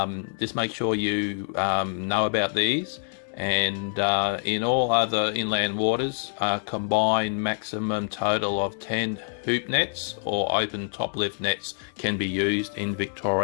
just make sure you know about these. And in all other inland waters, combined maximum total of 10 hoop nets or open top lift nets can be used in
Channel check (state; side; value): silent; right; 61 dB below the other